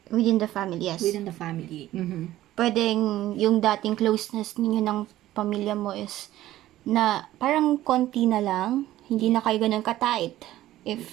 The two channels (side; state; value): left; quieter; 14.6 dB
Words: Within the family, yes. within the family. Pwedeng yung dating closeness ninyo ng pamilya mo is na parang konti na lang, hindi na kayo ganun ka-tight.